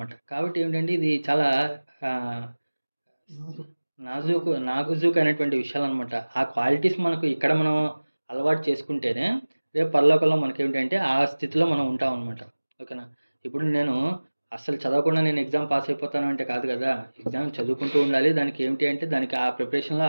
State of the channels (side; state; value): both; inverted; correlation -1.00